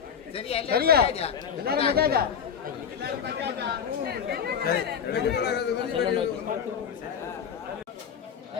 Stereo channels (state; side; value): quieter; right; 7.6 dB